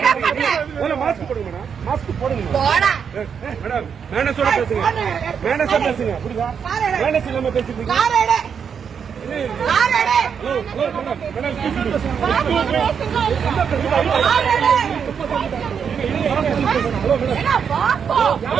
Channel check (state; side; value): quieter; left; 7.0 dB